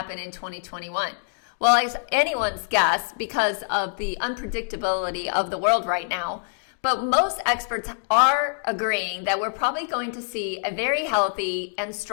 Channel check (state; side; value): silent; right; digital silence